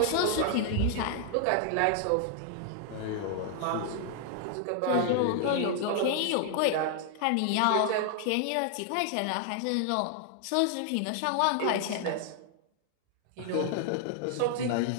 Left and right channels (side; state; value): both; different; correlation 0.00